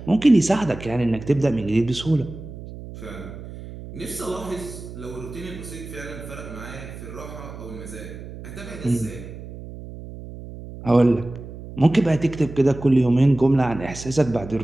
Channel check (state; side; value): noise; right; hum, 13 dB below the sound